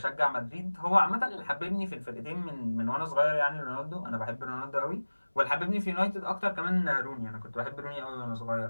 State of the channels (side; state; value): both; inverted; correlation -1.00